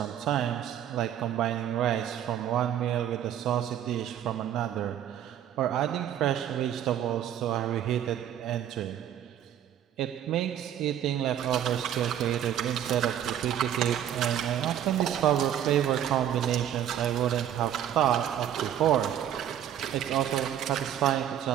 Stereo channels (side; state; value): left; quieter; 10.4 dB